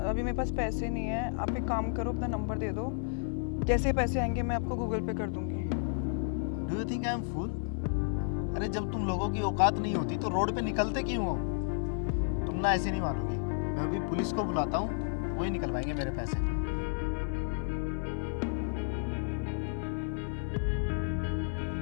अभी मेरे पास पैसे नहीं है, आप एक काम करो, अपना नंबर दे दो, जैसे पैसे आएंगे मैं आपको गूगल पे कर दूंगी। Do you think I am fool? अरे जब तुम लोगों की औकात नहीं होती तो रोड पे निकलते क्यों हो? तुम ना ऐसे नहीं मानोगी। मैं अभी पुलिस को बुलाता हूँ, वही निकलवाएंगे मेरे पैसे।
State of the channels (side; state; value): right; silent; digital silence